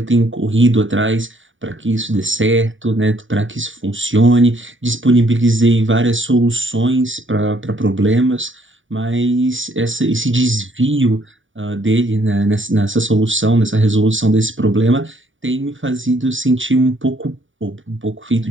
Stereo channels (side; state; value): left; late; 0.57 ms